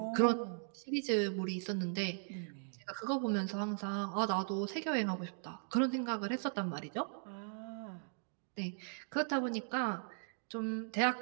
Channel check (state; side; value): silent; left; digital silence